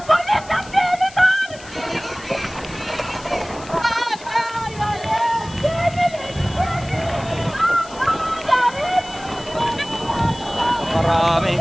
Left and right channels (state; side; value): noise; left; hiss, 19 dB below the sound